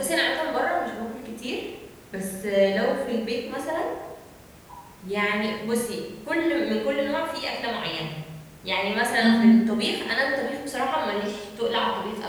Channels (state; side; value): identical; both; correlation 1.00